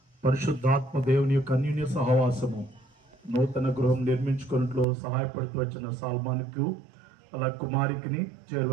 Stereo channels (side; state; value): left; drops out; at 4.9 s